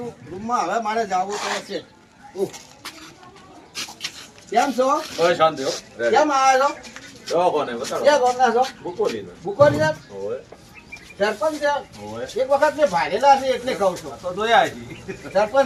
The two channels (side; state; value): both; identical; correlation 1.00